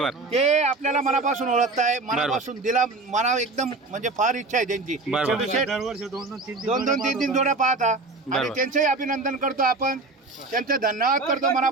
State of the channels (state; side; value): quieter; left; 3.4 dB